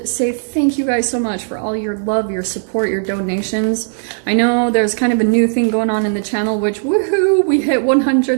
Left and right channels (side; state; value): left; silent; digital silence